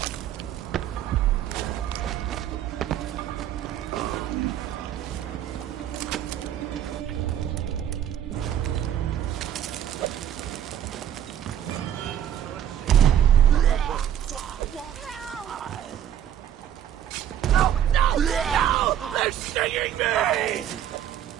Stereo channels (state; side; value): quieter; left; 10.3 dB